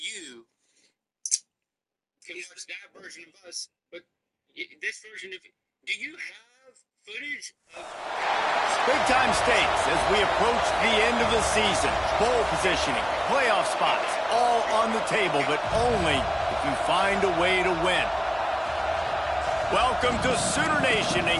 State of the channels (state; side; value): identical; both; correlation 1.00